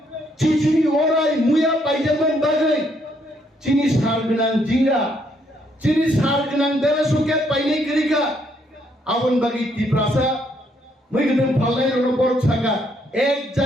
চিচিনি ওরাই মুয়া পাইজামান বাগাই চিনি সার গনাং জিঙ্গা চিনি সার গনাং বেলা সুকে পাইনে করিকা আবন বাগি ত্রিপ্রাসা মেখেতেন ফাল্লাই রণ বড় ছাকা এক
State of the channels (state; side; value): normal; both; correlation 0.71